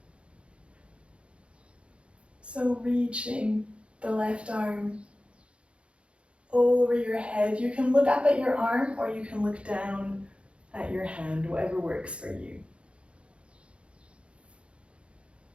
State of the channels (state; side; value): late; left; 0.059 ms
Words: So reaching the left arm over your head. You can look up at your arm or you can look down at your hand, whatever works for you.